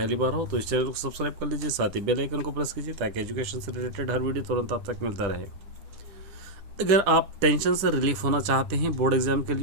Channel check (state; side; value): late; left; 10 ms